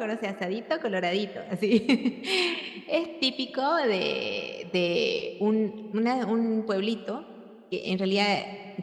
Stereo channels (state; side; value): identical; both; correlation 1.00